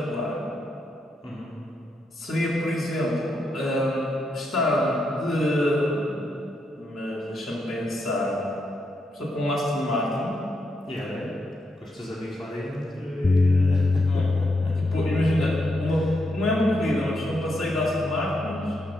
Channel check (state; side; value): normal; both; correlation 0.81